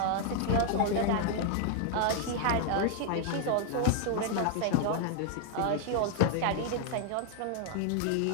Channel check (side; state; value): both; different; correlation 0.00